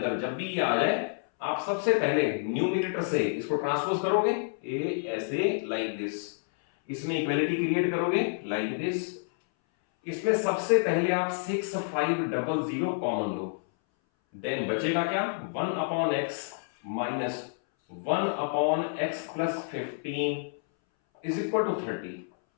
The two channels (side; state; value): right; silent; 59 dB below the other